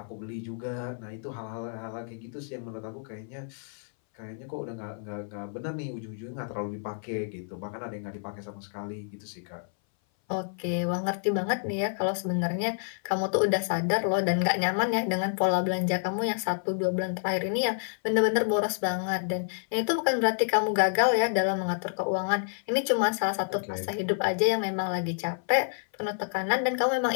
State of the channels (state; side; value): silent; right; 59 dB below the other